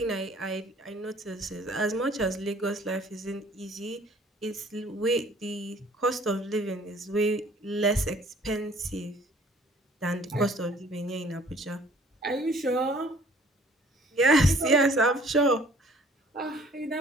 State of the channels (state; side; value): normal; both; correlation 0.55